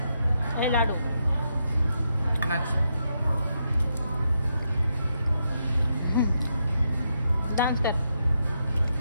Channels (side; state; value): both; inverted; correlation -0.82